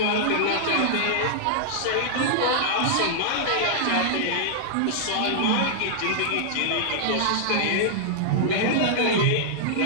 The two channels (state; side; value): different; both; correlation -0.01